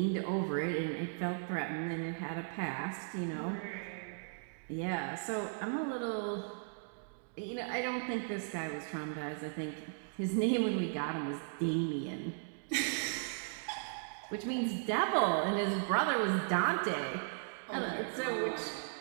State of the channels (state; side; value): silent; left; digital silence